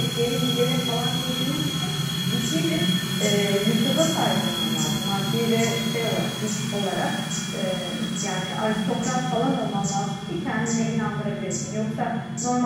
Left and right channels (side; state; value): both; identical; correlation 1.00